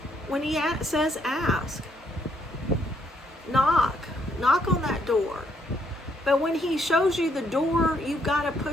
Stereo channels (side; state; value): both; normal; correlation 0.71